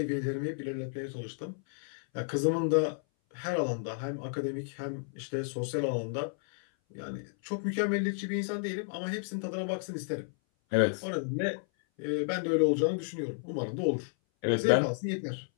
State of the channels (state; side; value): silent; right; 56 dB below the other